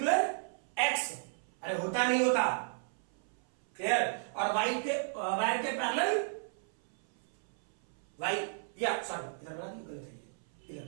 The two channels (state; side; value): silent; left; 55 dB below the other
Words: X, अरे होता नहीं होता, क्लियर, और वायर के पैरेलल Y, या सॉरी इधर बना दी, गलत है, इधर,